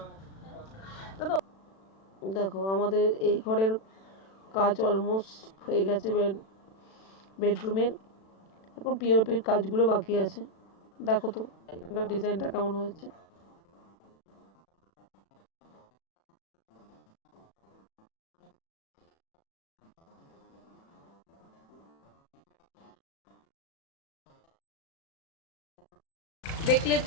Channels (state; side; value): late; right; 36 ms